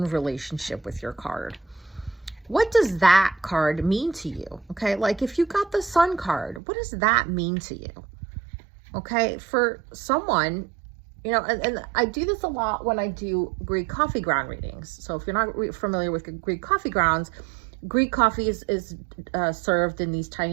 relationship with your card. What does that card mean to you? Okay, like if you got the Sun card, what does that mean to you? Okay, for someone, you know, and I do this a lot when I do Greek coffee ground readings. So if you're not familiar with Greek coffee grounds, Greek coffee is served in these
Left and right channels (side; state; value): left; drops out; at 6.6 s